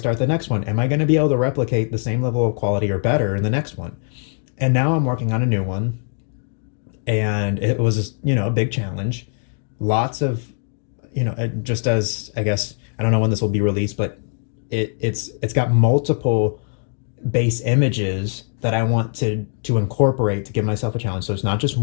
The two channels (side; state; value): right; silent; 58 dB below the other